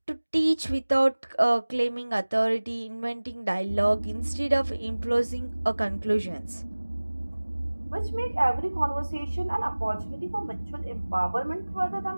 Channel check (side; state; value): both; inverted; correlation -1.00